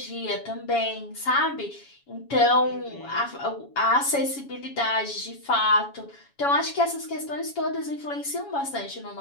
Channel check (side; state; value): right; late; 7.2 ms